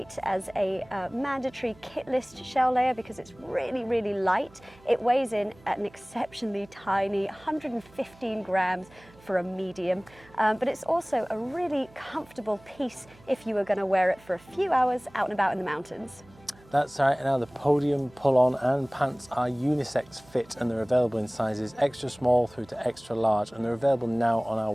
as a mandatory kit list shell layer because it's really, really light. It weighs in at an exceptionally tiny 115 grams for a medium, but it's also a really comfortable piece if you were going to wear it for a few hours out and about in the mountains. That's right. Now the Podium Pull-On and pants are unisex fit, and they're available in sizes extra small through to extra large, and they're available now on our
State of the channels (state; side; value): noise; right; hum, 26 dB below the sound